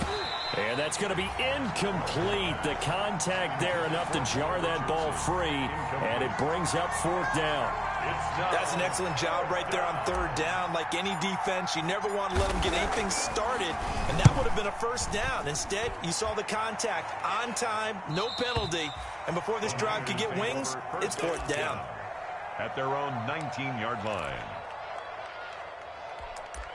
And that's going to be incomplete. The contact there enough to jar that ball free, and it brings up 4th down. That's an excellent job right there on 3rd down. Like any defense, you never want to let them get anything started, and that would have been a 1st down. Instead, you saw the contact on time, no penalty, and before this drive could get wings, it's 4th down. At their own 19-yard line.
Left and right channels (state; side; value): identical; both; correlation 1.00